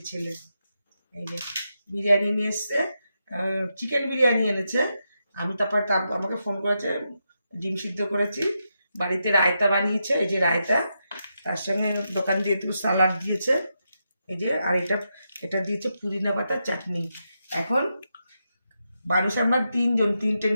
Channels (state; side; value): inverted; both; correlation -0.85